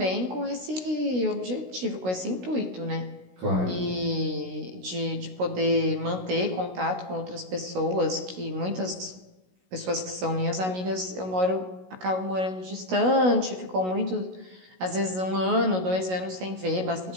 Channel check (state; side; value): late; left; 16 ms